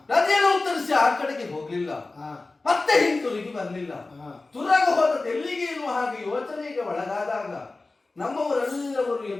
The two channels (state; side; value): quieter; right; 3.4 dB